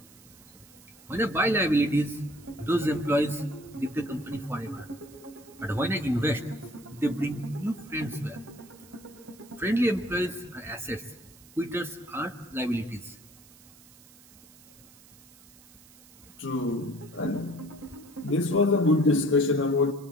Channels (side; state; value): right; noise; hiss, 24 dB below the sound